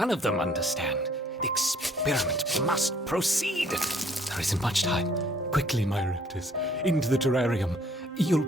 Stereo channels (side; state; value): both; normal; correlation 0.61